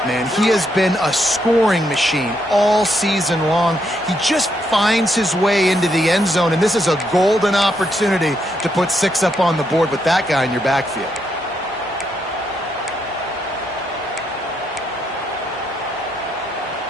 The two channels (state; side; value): normal; both; correlation 0.77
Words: man. He has been a scoring machine all season long. He just finds his way into the end zone, and this is a golden opportunity to put 6 up on the board with that guy in your backfield.